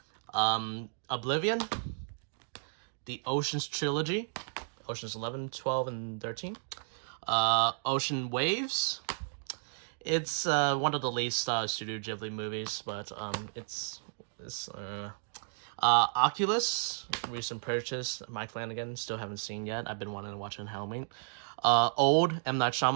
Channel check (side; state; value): left; silent; digital silence